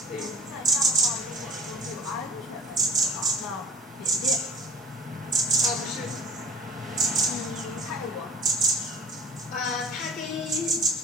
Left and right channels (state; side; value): normal; both; correlation 0.42